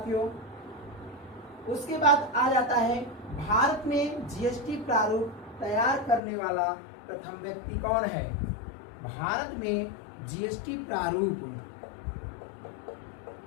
उसके बाद आ जाता है भारत में जीएसटी प्रारूप तैयार करने वाला प्रथम व्यक्ति कौन है? भारत में जीएसटी प्रारूप,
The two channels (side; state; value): right; drops out; at 6.2 s